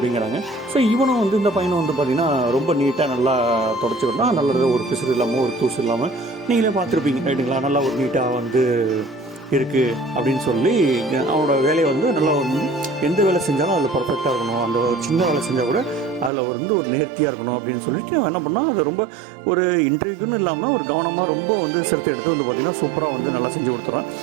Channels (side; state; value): left; drops out; at 16.3 s